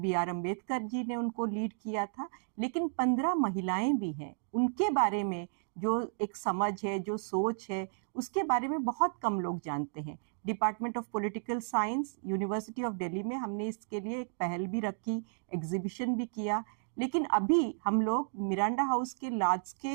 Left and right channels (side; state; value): left; silent; digital silence